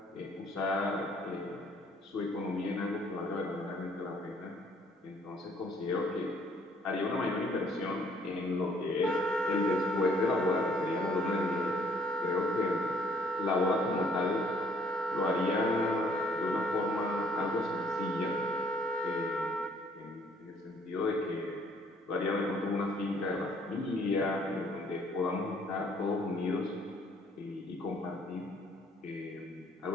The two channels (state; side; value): normal; both; correlation 0.62